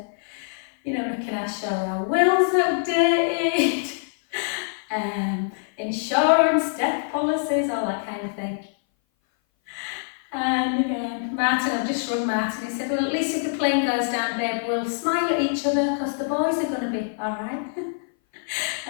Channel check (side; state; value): right; silent; 58 dB below the other